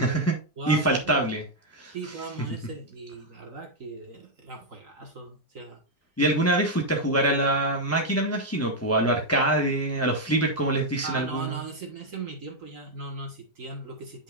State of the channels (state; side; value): normal; both; correlation -0.01